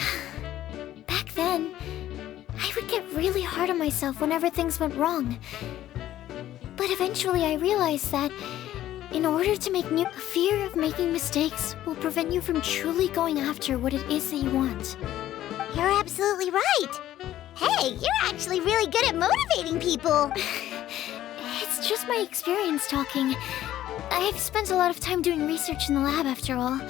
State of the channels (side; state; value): right; quieter; 13.1 dB